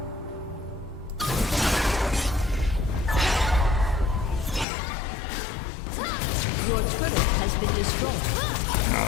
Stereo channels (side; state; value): right; drops out; at 4.7 s